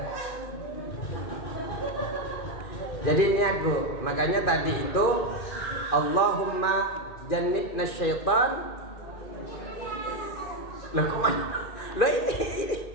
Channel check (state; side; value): late; right; 2.4 ms